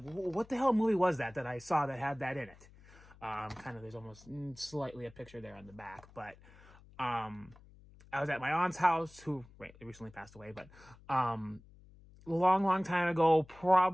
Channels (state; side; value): noise; left; hum, 23 dB below the sound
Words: what the hell movie was that I saw that had that in it? Kind of, there's almost slightly a picture there on the back, but I was at my aunt's house, who recently passed away, but long time ago,